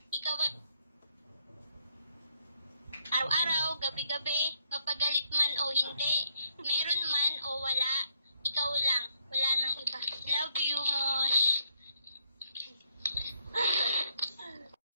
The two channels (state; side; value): inverted; both; correlation -0.73